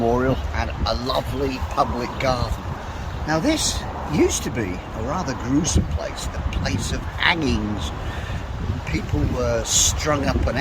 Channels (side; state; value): both; identical; correlation 1.00